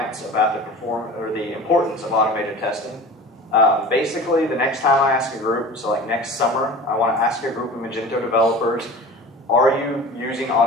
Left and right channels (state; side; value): normal; both; correlation 0.38